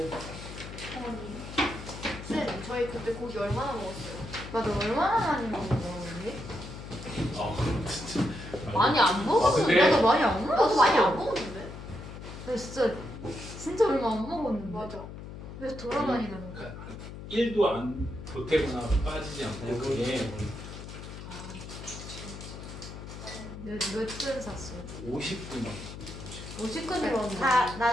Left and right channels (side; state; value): left; noise; hum, 11 dB below the sound